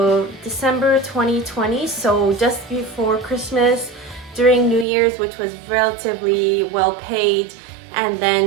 December 2020, so just before Christmas, during New Year's, which was relatively well paid, and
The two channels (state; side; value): drops out; left; at 4.9 s